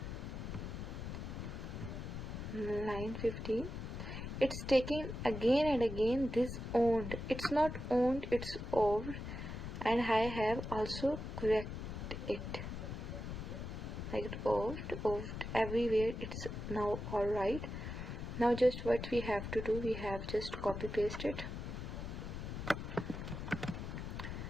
Line 15, it's taking again and again this owned, it's not owned, it's owned, and I have also corrected it like owned everywhere. It's now alright. Now just what we have to do, we have just copy paste it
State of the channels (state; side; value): noise; left; rumble, 6 dB below the sound